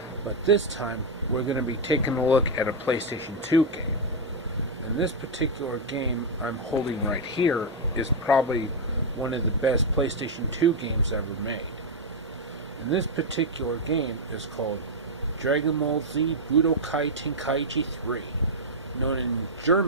but this time we're going to be taking a look at a PlayStation 2 game. And this particular game I'm holding right here is probably one of the best PlayStation 2 games ever made. And this particular game is called Dragon Ball Z Budokai Tenkaichi 3, known in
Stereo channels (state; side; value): normal; both; correlation 0.00